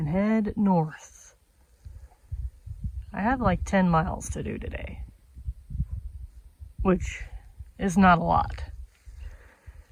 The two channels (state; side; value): identical; both; correlation 1.00